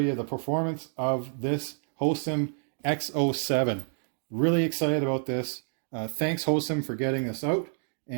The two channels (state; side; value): silent; left; digital silence